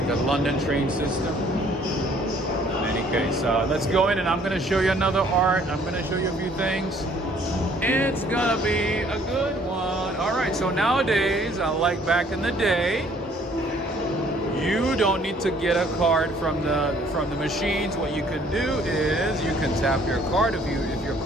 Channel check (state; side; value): normal; both; correlation 0.60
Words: London train system. Okay, so let's go in and I'm gonna show you another art. I'm gonna show you a few things. It's gonna be a good one. All right, so nowadays, unlike back in the day, you don't need to get a card from the machines. What you can do is you can tap your card. If your